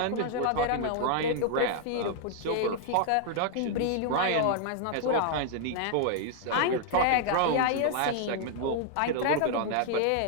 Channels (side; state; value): both; different; correlation -0.01